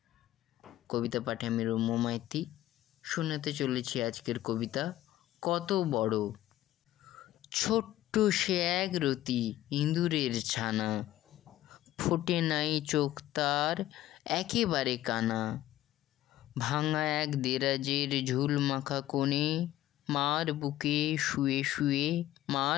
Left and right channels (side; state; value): right; quieter; 14.3 dB